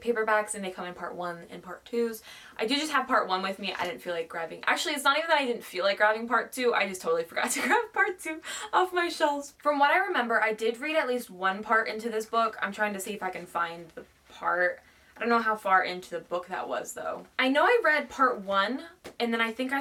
paperbacks and they come in part 1 and part 2s. I do just have part 1 with me. I didn't feel like grabbing. Actually, it's not even that I didn't feel like grabbing part 2. I just totally forgot to grab part 2 off my shelves. From what I remember, I did read at least one part into this book. I'm trying to see if I can find the part. I don't know how far into the book that was though. I know I read part 1 and then I think I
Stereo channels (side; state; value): both; identical; correlation 1.00